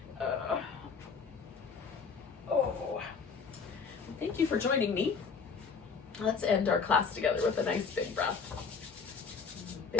Thank you for joining me. Let's end our class together with a nice big breath.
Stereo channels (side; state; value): right; quieter; 5.5 dB